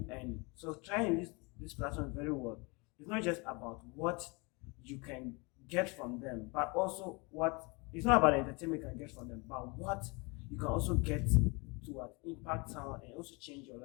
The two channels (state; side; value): quieter; right; 28.6 dB